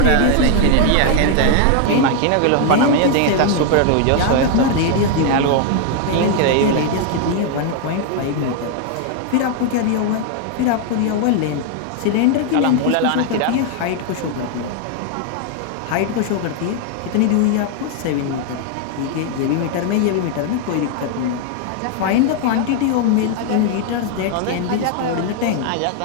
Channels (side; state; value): both; different; correlation 0.00